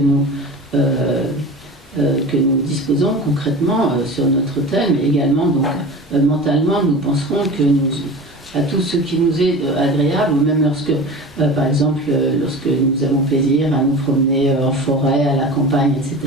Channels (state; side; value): normal; both; correlation 0.33